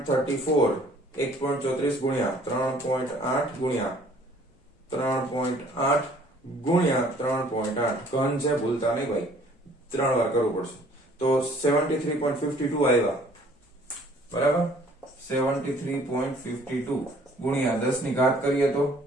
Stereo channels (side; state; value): both; normal; correlation 0.57